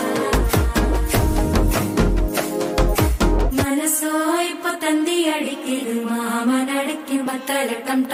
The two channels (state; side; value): identical; both; correlation 1.00